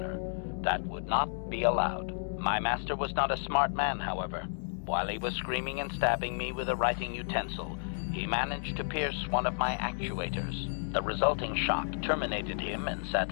That would not be allowed. My master was not a smart man, however. While he was screaming and stabbing me with a writing utensil, he managed to pierce one of my actuators. The resulting shock terminated him and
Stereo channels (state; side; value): silent; right; digital silence